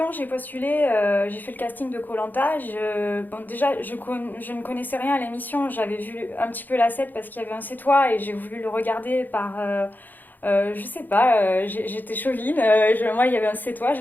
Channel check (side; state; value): right; late; 0.086 ms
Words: j'ai postulé, j'ai fait le casting de koh bon, déjà, je ne connaissais rien à l'émission. J'avais vu un petit peu la set parce qu'il y avait un C'est toi et j'ai voulu le regarder par... je sais pas, j'étais chauvine. Moi, il y avait un C'est toi, je